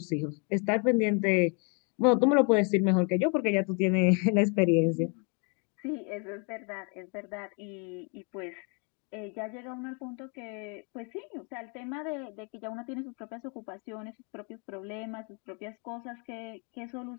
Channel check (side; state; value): right; quieter; 36.3 dB